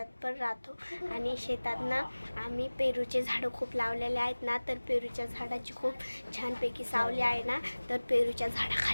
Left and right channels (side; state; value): both; inverted; correlation -1.00